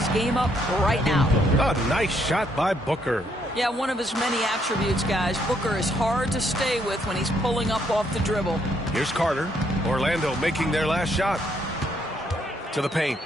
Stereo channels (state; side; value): normal; both; correlation 0.72